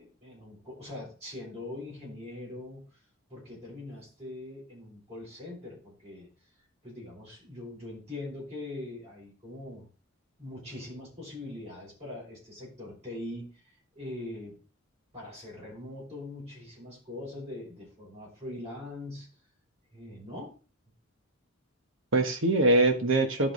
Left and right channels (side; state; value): both; normal; correlation -0.13